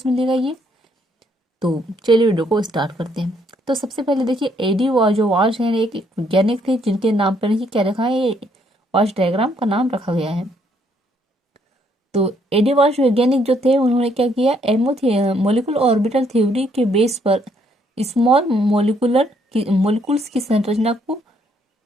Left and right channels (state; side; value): normal; both; correlation 0.69